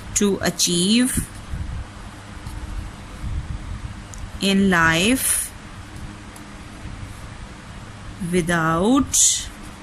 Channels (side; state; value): both; identical; correlation 1.00